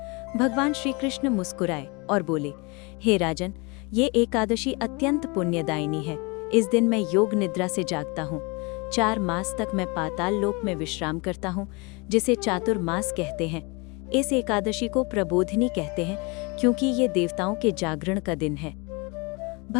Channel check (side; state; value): right; quieter; 28.5 dB